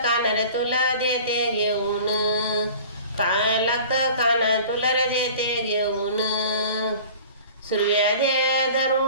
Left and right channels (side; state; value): both; inverted; correlation -0.43